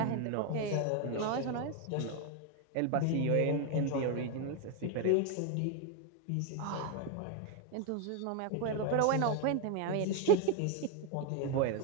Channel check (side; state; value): both; different; correlation 0.01